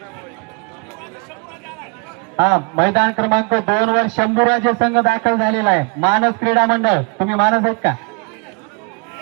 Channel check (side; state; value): left; quieter; 31.6 dB